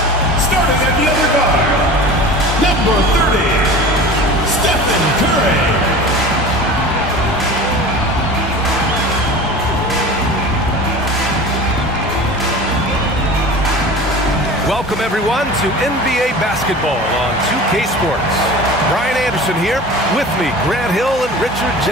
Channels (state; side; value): normal; both; correlation 0.37